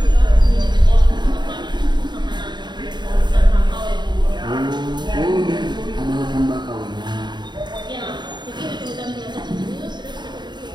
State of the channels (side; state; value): left; late; 0.21 ms